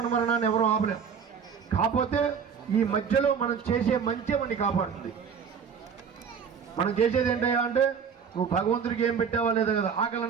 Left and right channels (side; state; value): left; quieter; 6.7 dB